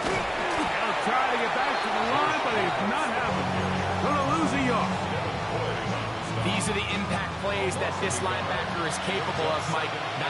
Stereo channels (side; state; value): both; identical; correlation 1.00